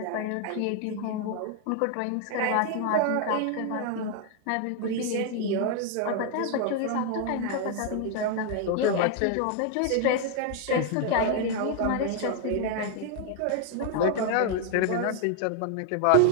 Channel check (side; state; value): both; different; correlation 0.01